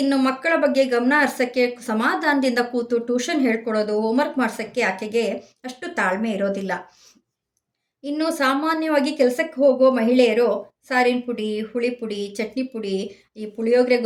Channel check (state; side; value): identical; both; correlation 1.00